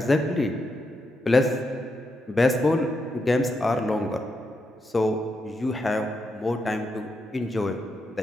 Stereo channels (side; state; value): both; normal; correlation 0.83